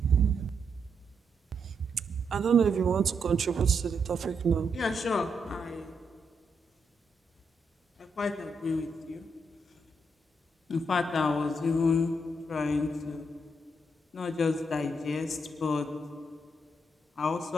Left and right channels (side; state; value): both; normal; correlation 0.79